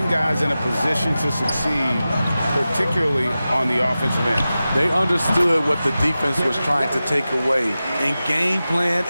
guys in a position to succeed, particularly on the offensive end. They understood what the defense was trying to take away and game plan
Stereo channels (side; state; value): both; inverted; correlation -0.94